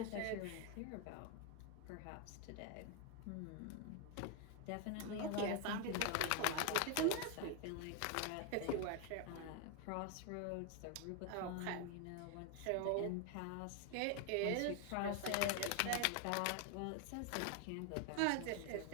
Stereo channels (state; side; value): different; both; correlation 0.01